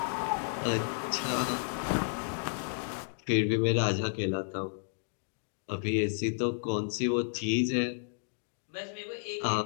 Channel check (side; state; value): right; silent; digital silence